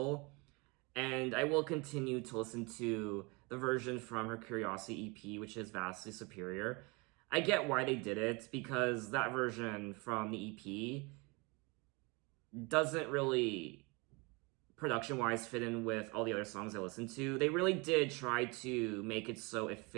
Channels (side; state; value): left; quieter; 27.9 dB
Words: and I will continue to listen to the version from her Curiosity EP, which is vastly superior. I get why they did it, because that version from the EP doesn't really, production-wise, fit in with all the other songs I listened to. They really did try to make it so it